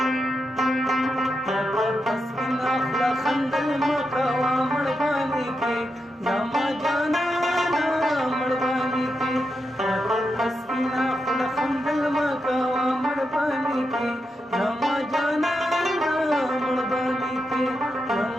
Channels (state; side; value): normal; both; correlation 0.86